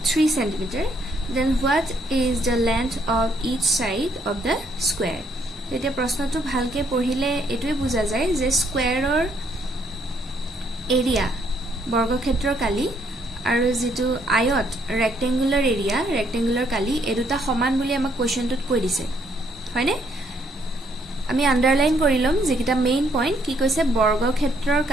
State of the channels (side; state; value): both; normal; correlation 0.70